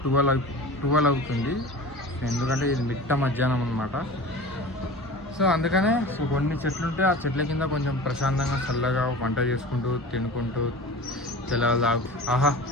12 అవుతుంది. ఎందుకంటే ఇది మిట్ట మధ్యాహ్నం అనమాట. సో అందుకనే కొన్ని చెట్లు ఉంటే ఆ చెట్ల కింద కొంచెం ప్రశాంతంగా చల్లగా వంట చేసుకుంటూ తినుకుంటూ తెల్లవారు ఆహా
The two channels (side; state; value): both; normal; correlation 0.36